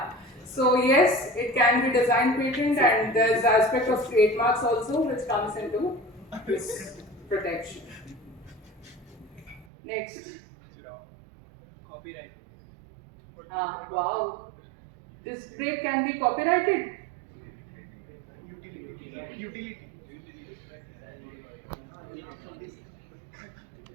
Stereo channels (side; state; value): left; drops out; at 9.7 s